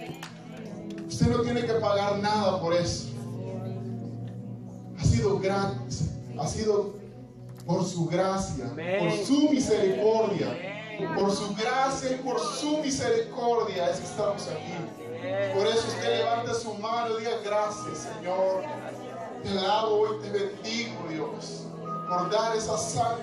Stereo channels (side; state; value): both; identical; correlation 1.00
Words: Usted no tiene que pagar nada por eso. Ha sido gratis. Ha sido por su gracia, por su misericordia. Por su gracia y por su misericordia es que estamos aquí. Por eso usted levanta su mano y diga: gracias, Señor. Te alabo y te bendigo, Dios, por dar esa